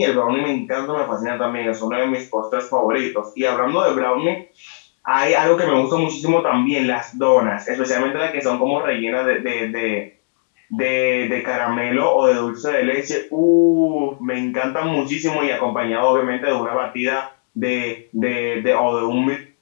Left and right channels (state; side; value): silent; right; digital silence